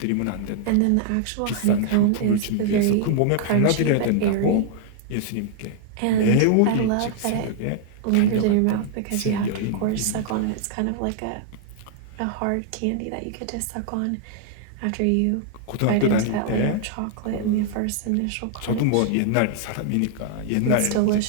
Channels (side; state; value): both; different; correlation 0.00